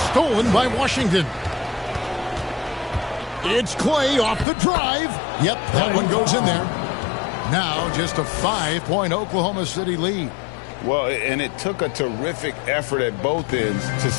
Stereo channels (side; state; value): right; drops out; at 4.5 s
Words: Stolen by Washington. It's Clay off the drive. Yep, that one goes in there. Now just a 5-point Oklahoma City lead. Well, and it took a terrific effort at both ends to